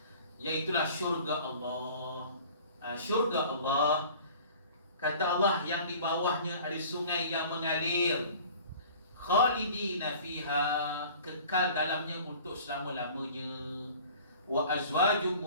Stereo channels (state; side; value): inverted; both; correlation -0.46